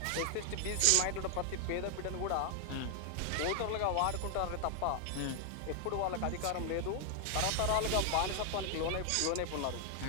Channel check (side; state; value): both; different; correlation 0.00